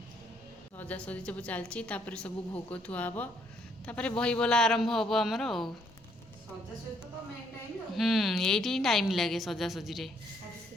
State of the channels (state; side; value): normal; both; correlation 0.69